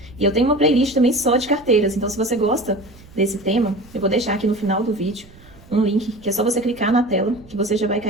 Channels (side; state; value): right; noise; rumble, 23 dB below the sound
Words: E eu tenho uma playlist também só de carteiras, então se você gosta desse tema, eu vou deixar aqui no final do vídeo um link, que é só você clicar na tela, que você já vai